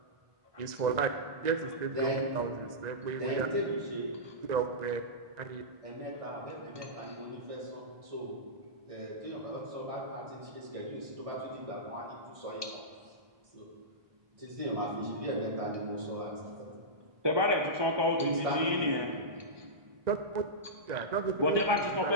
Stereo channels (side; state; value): left; late; 1.2 ms